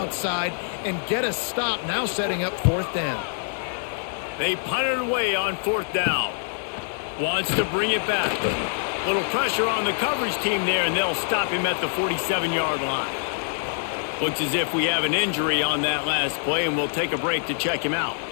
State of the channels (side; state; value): right; silent; digital silence